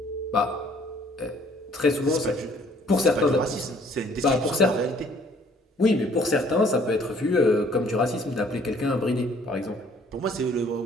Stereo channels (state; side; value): normal; both; correlation 0.59